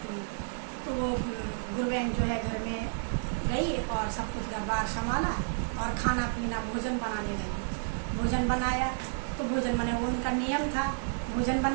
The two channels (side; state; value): left; silent; digital silence